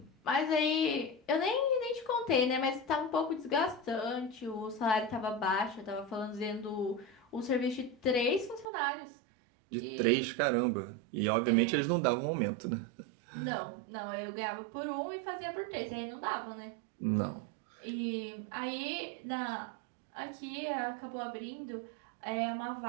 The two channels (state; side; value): drops out; left; at 8.7 s